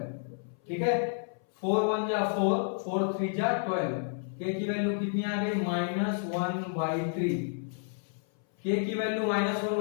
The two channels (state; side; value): silent; right; 57 dB below the other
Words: ठीक है, 4 1 जा 4, 4 3 जा 12, k की वैल्यू कितनी आ गई -1/3। k की वैल्यू